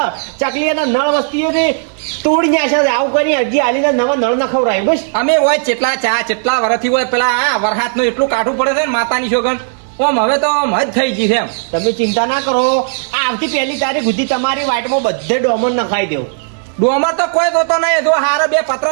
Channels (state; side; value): silent; left; digital silence